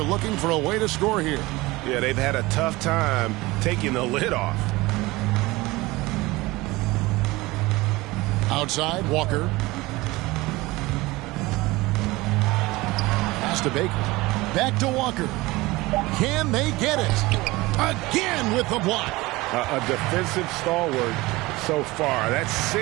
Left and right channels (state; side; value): quieter; left; 20.9 dB